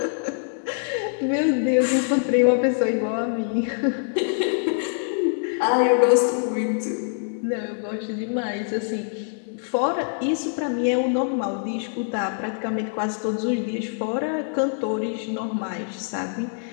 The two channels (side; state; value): right; silent; 61 dB below the other